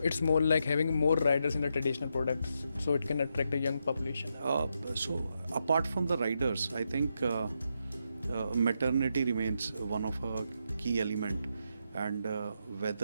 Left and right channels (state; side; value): inverted; both; correlation -0.82